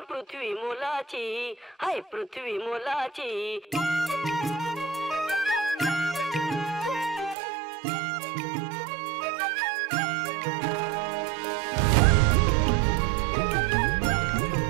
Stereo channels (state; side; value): drops out; left; at 7.4 s